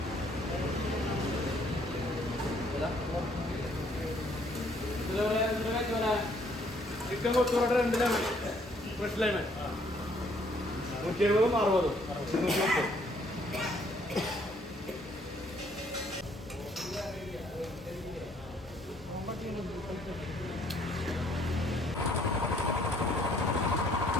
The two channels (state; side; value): normal; both; correlation 0.64